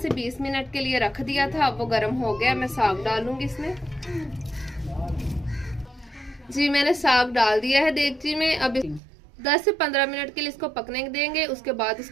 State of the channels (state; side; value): drops out; left; at 9.0 s